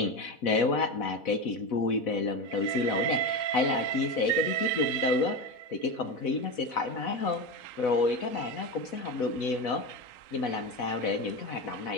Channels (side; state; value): right; late; 4.1 ms